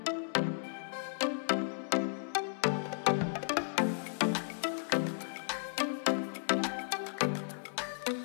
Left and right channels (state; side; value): silent; right; digital silence